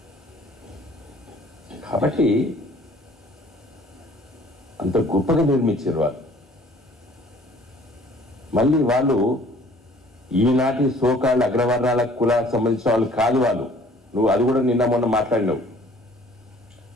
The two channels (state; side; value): normal; both; correlation 0.54